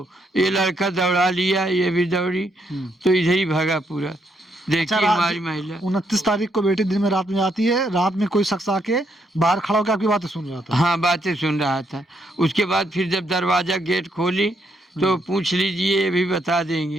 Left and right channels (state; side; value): normal; both; correlation 0.75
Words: ये लड़का दौड़ा लिया, ये भी दौड़ी, तो इधर ही भागा पूरा। अच्छा, देखिए हमारी महिला 29 तारीख को बेटी दिन में रात में आती है, रात में कोई शख्स आके बाहर खड़ा होकर आपकी बातें सुन रहा था। हाँ बातें सुन रहा था। उसके बाद फिर जब दरवाज़ा गेट खोली तो पूछ लीजिए, ये भी बता